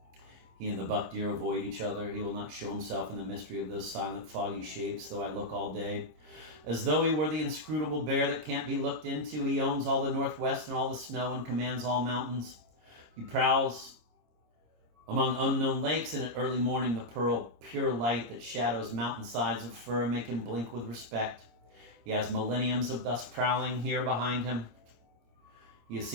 He and the buck deer avoid each other. He will not show himself in the mystery of those silent foggy shapes, though I look all day. As though he were the inscrutable bear that can't be looked into, he owns all the northwest and all the snow and commands all mountains. He prowls among unknown lakes, and at early morning the pearl pure light that shadows mountainsides of fir make him blink with respect. He has millenniums of thus prowling here behind him. He has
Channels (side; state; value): left; late; 26 ms